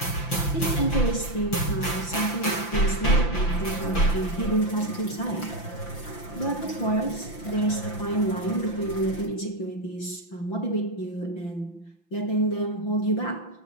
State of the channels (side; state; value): right; late; 5.9 ms